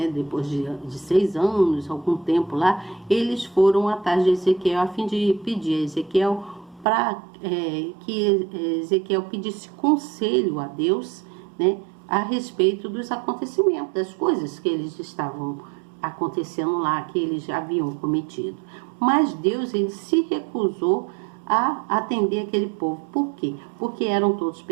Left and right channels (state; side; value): drops out; left; at 6.9 s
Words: Depois de 6 anos, algum tempo lá, eles foram atrás de Ezequiel a fim de pedir a Ezequiel para que Ezequiel pedisse conselho a Deus, né? A respeito dos acontecimentos, das coisas que eles estavam acontecendo lá, que eles já haviam cometido. Mas Deus, ele se recusou a atender aquele povo. Por quê? Porque eram todos